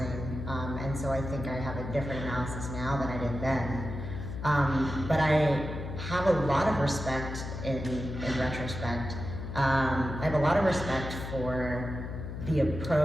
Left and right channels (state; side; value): noise; left; hum, 7 dB below the sound